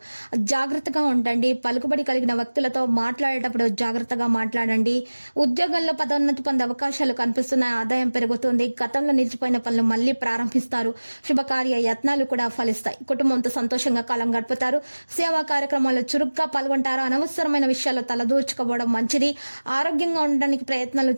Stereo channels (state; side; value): inverted; both; correlation -1.00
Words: జాగ్రత్తగా ఉండండి. పలుకుబడి కలిగిన వ్యక్తులతో మాట్లాడేటప్పుడు జాగ్రత్తగా మాట్లాడండి. ఉద్యోగంలో పదోన్నతి పొందే అవకాశాలు కనిపిస్తున్నాయి. ఆదాయం పెరుగుతుంది. గతంలో నిలిచిపోయిన పనులు మళ్లీ ప్రారంభిస్తారు. శుభకార్య యత్నాలు కూడా ఫలిస్తాయి. కుటుంబంతో సంతోషంగా కాలం గడుపుతారు. సేవా కార్యక్రమాల్లో చురుగ్గా పాల్గొంటారు. అనవసరమైన విషయాల్లో తలదూర్చుకోవడం మంచిది. ఆరోగ్యంగా ఉండడానికి ప్రయత్నాలు